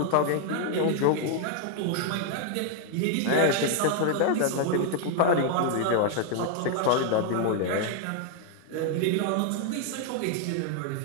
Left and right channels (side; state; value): both; different; correlation 0.00